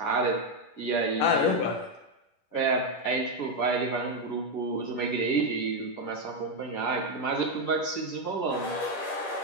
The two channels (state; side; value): late; right; 10 ms